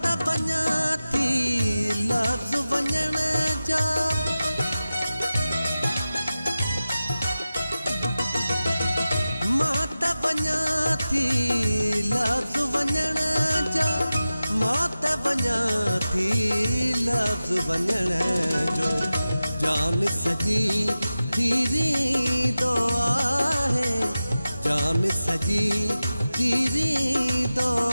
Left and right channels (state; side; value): inverted; both; correlation -0.94